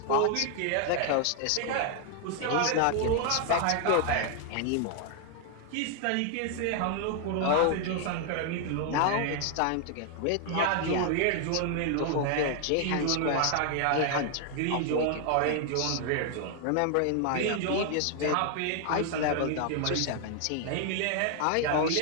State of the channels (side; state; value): both; different; correlation 0.00